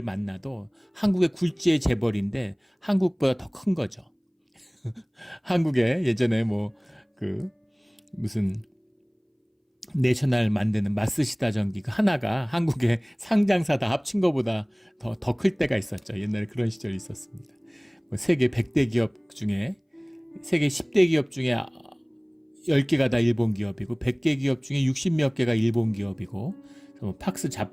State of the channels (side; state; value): both; identical; correlation 1.00